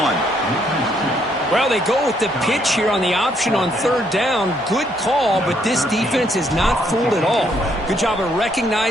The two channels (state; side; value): normal; both; correlation 0.71